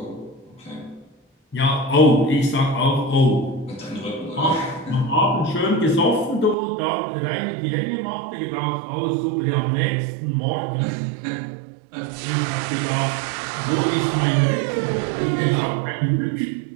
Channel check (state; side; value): drops out; left; at 6.6 s